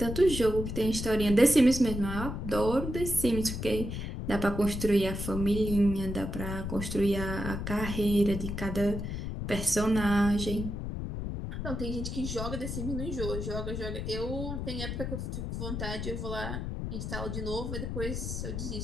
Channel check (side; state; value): left; noise; rumble, 4 dB below the sound